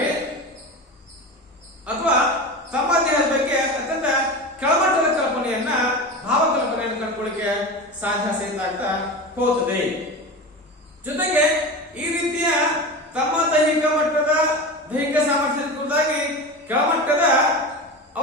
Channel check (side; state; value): both; normal; correlation 0.27